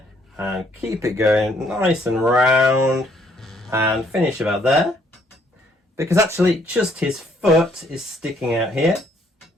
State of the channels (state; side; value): normal; both; correlation 0.67